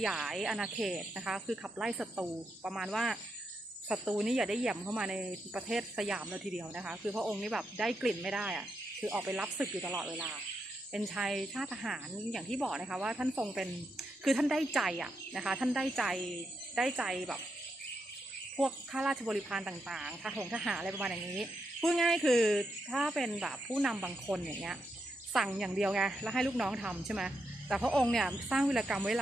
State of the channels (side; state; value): both; normal; correlation 0.84